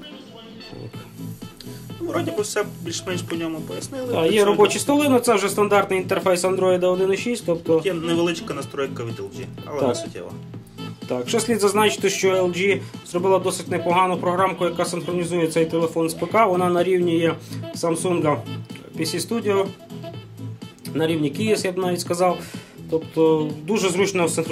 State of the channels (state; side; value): identical; both; correlation 1.00